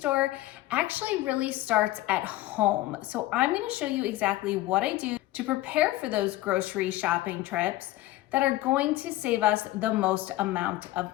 actually really starts at home. So I'm going to show you exactly what I do to prepare for those grocery shopping trips that are going to save us the most amount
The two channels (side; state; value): right; quieter; 17.0 dB